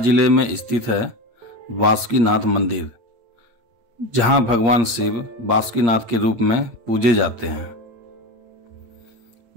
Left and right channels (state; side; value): late; left; 8.6 ms